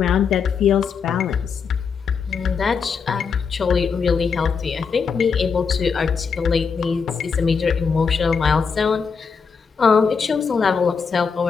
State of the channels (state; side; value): quieter; right; 5.8 dB